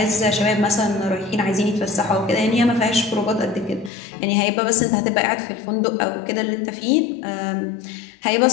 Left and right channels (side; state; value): right; drops out; at 3.9 s